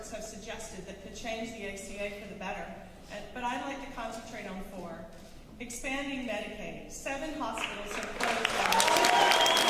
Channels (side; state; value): both; identical; correlation 1.00